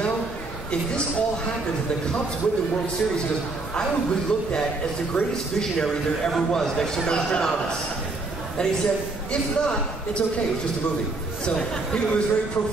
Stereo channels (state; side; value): quieter; left; 3.4 dB